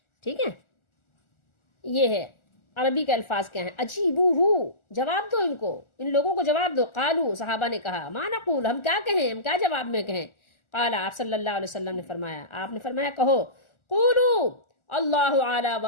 ٹھیک ہے۔ یہ ہے عربی کے الفاظ کیا ہیں، اجیبوہ، جواب دو ان کو، ان لوگوں کو جواب دو۔ قالو، صحابہ نے کہا، ما نقول، ہم کیا کہیں، ہم کیا جواب میں کہیں؟ قال، آپ صلی اللہ علیہ وسلم نے فرمایا، آپ نے فرمایا کہو قولو اللہ اعلی و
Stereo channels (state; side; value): late; right; 1.4 ms